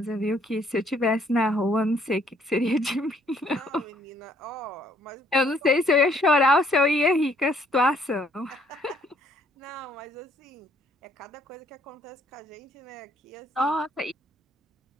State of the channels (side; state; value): both; normal; correlation 0.65